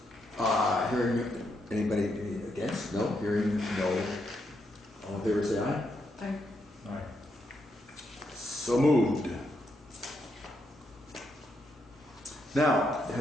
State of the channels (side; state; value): both; normal; correlation 0.80